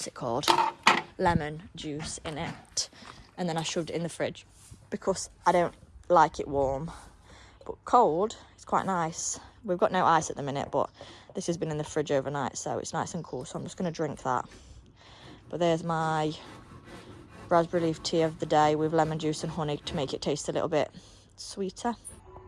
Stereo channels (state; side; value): identical; both; correlation 1.00